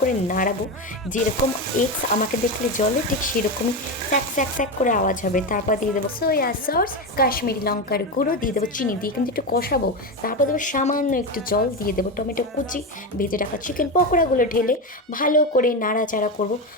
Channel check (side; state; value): both; normal; correlation 0.16